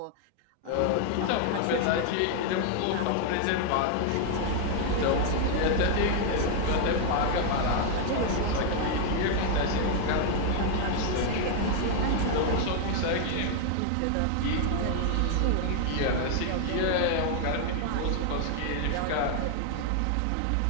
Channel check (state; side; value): different; both; correlation 0.00